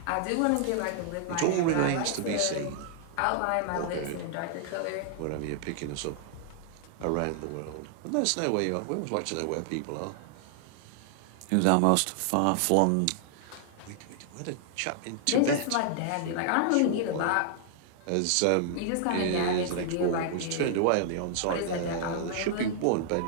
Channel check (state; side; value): different; both; correlation -0.01